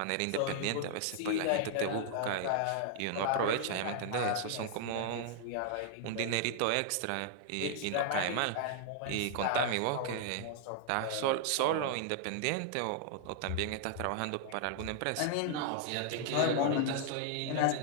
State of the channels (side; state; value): both; different; correlation 0.00